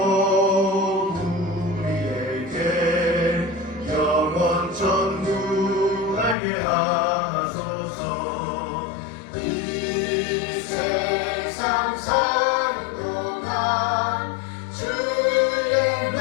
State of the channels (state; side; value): drops out; right; at 6.4 s